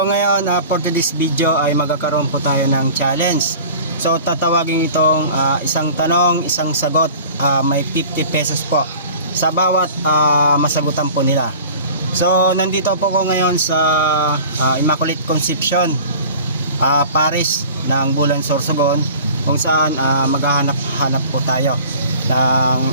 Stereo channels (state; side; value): inverted; both; correlation -0.42